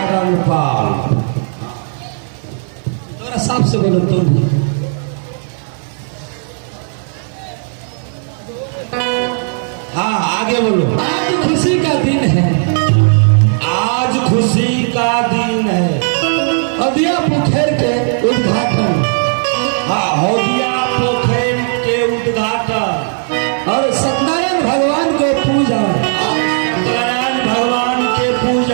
रणपाल। थोड़ा साफ से बोलो तुम। हाँ आगे बोलो। आज खुशी का दिन है, आज खुशी का दिन है। हदिया पोखर के उद्घाटन। हाँ, हदिया पोखर के उद्घाटन और सत्यनारायण भगवान को पूजा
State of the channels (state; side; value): silent; left; digital silence